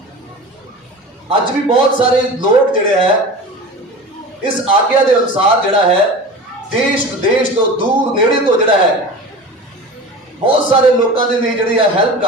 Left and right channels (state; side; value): normal; both; correlation 0.34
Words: अज भी बहुत सारे लोग जिहड़े है इस आज्ञा के अनुसार जिहड़ा है देश विदेश तो दूर नेड़े तो जिहड़ा है बहुत सारे लोगों के लिए जिहड़ी है हेल्प